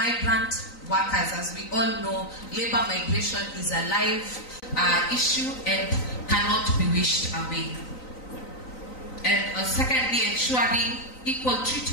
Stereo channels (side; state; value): right; late; 3.9 ms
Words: workers. As we all know, labor migration is a live issue and cannot be wished away. and secondly, ensuring equal